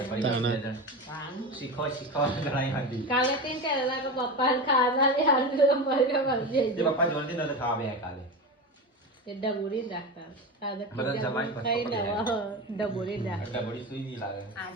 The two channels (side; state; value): both; normal; correlation 0.23